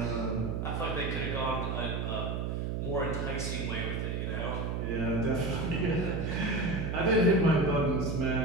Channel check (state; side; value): noise; right; hum, 1 dB below the sound